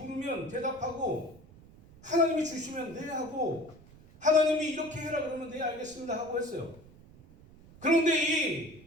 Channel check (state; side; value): noise; right; rumble, 23 dB below the sound